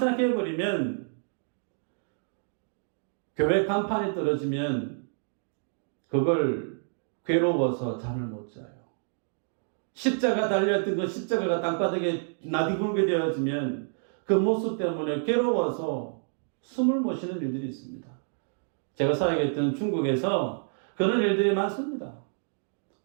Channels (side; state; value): left; silent; digital silence